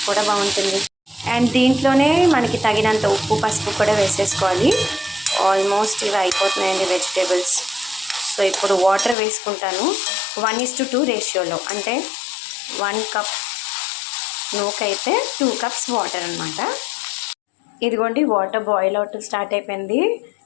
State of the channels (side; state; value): right; drops out; at 9.2 s